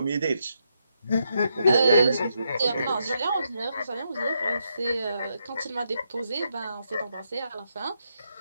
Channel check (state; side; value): inverted; both; correlation -0.80